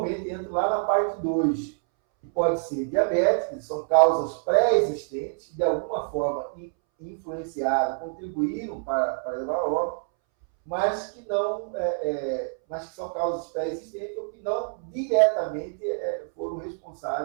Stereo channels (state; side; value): silent; left; 61 dB below the other